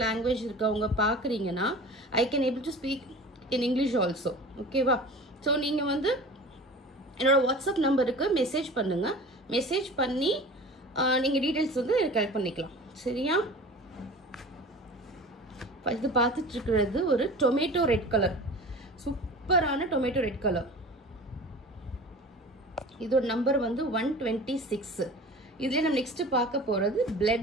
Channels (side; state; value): both; normal; correlation 0.39